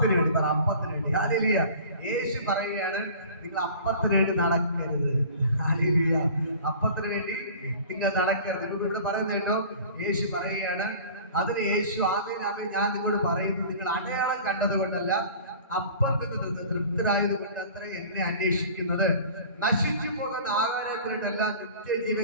വേണ്ടി. അപ്പത്തിന് വേണ്ടി. ഹല്ലേലൂയ. യേശു പറയുകയാണ്, നിങ്ങൾ അപ്പത്തിന് വേണ്ടി നടക്കരുത്. ഹല്ലേലൂയ. അപ്പത്തിന് വേണ്ടി നിങ്ങൾ നടക്കരുത്. ഇവിടെ പറയുന്നത് കേട്ടോ, യേശു പറയുകയാണ്, അതിന് യേശു ആമേൻ ഞാൻ നിങ്ങളോട് പറയുന്നു, നിങ്ങൾ അടയാളം കണ്ടതുകൊണ്ടല്ല, അപ്പത്തിന് തൃപ്തരായതുകൊണ്ട് അത്ര എന്നെ അന്വേഷിക്കുന്നത്. നശിച്ചു പോകുന്ന ആഹാരത്തിനായിട്ടല്ല,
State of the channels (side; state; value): both; inverted; correlation -0.43